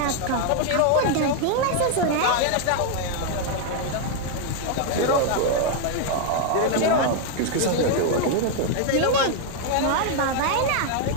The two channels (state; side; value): different; both; correlation 0.00